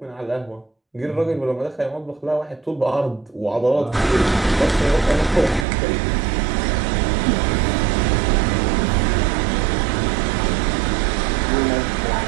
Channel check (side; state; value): left; drops out; at 5.7 s